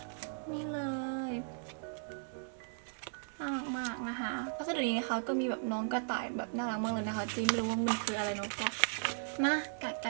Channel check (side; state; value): left; silent; digital silence